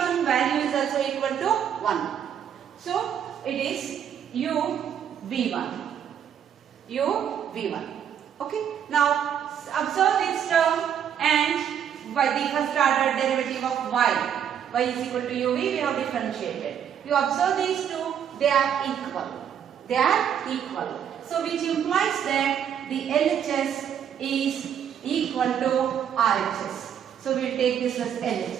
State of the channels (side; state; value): left; quieter; 8.9 dB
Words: value is also equal to 1. So it is uv1. uv1. Okay. Now observe this term and by the first order derivative of y is equal to uv, we have differentiated. You observe these two, they are equal. They are equal. So which implies that the LHS is equal to RHS. So we will take this as